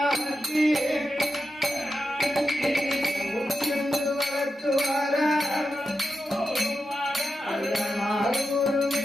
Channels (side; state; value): both; normal; correlation 0.89